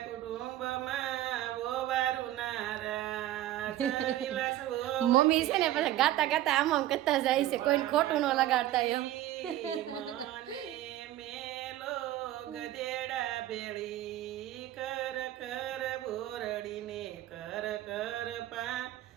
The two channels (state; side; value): quieter; left; 14.1 dB